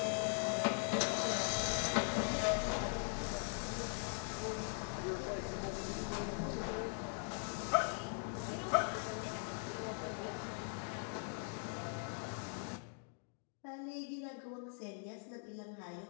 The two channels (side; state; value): right; silent; 50 dB below the other